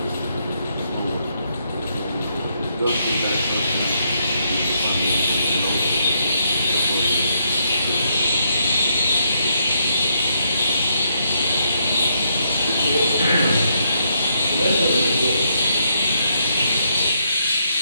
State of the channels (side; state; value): both; inverted; correlation -0.76